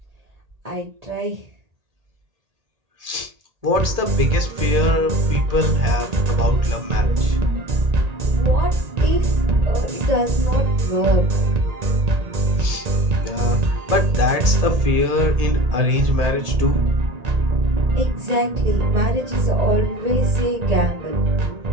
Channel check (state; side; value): late; left; 1.8 ms